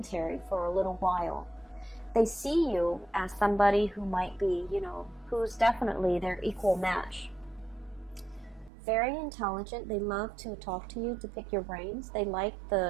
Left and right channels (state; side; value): drops out; left; at 8.7 s